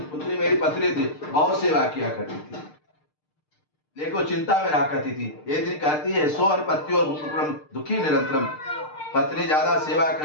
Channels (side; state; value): right; late; 6.6 ms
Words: बहुत सेवा किया करती थी लेकिन वो चिंता में रहा करती थी। एक दिन कहती है सो और पत्तियों दुखी निरंतरम। पत्नी ज्यादा सेवा